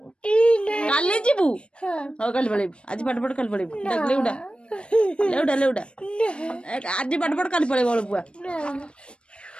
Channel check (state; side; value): late; right; 0.057 ms